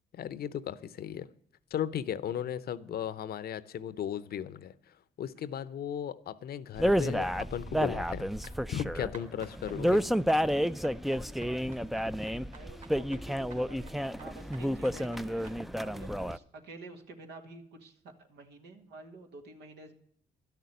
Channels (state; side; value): normal; both; correlation 0.82